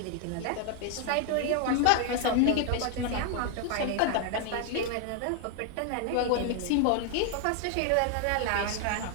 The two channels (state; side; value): different; both; correlation 0.00